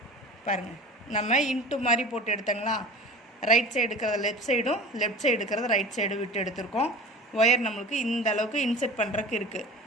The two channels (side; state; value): both; normal; correlation 0.36